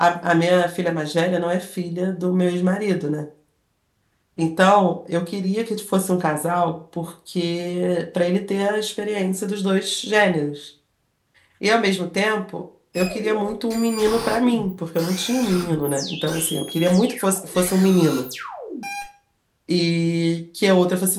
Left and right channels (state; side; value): identical; both; correlation 1.00